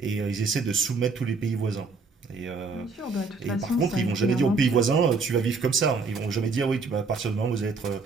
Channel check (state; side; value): quieter; left; 4.3 dB